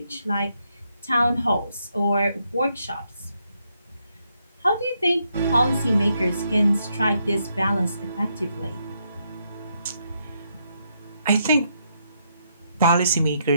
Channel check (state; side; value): inverted; both; correlation -0.78